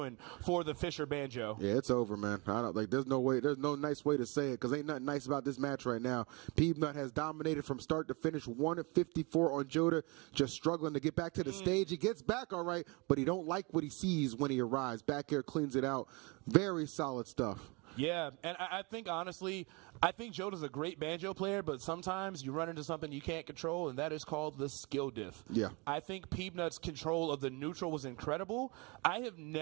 for the Fisher Banjo. Yeah, it's over, man. I don't like. There's no way. There's no nice way to say it, because ain't nothing nice about this match right now. Peanut has dominated from start to finish. 1-54 on Joda, just struggling to get back to the stage. He gets back all right, but he don't like what he sees when he arrives. Back here cleans it out. Very solid stuff. Yeah, and I think, honestly, I think Joda's a great banjo player, but sometimes you run into something you can't control, and that is called the skill diff. Yeah. I think Peanut's control of the neutral was incredible. I have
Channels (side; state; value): left; quieter; 28.5 dB